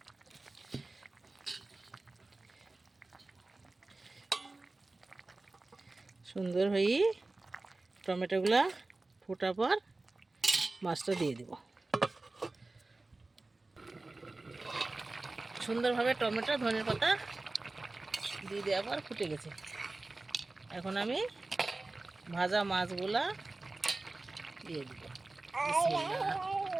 সুন্দর হয়ে টমেটোগুলা ফোটার পর মাছটা দিয়ে দেব। সুন্দরভাবে টমেটো, ধনিয়ার পাতা দিয়ে দেওয়ার পর ফুটে গেছে। এখন আমি ভাজা মাছগুলা দিয়ে দিব।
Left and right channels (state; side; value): quieter; left; 3.2 dB